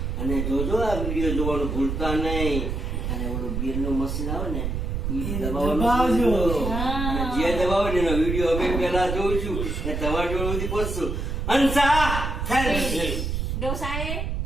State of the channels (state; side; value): noise; right; rumble, 2 dB below the sound